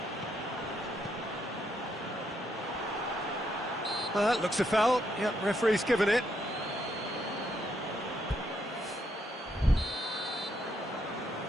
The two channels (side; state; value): both; normal; correlation 0.76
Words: That looks a foul. Yep, referee's given it.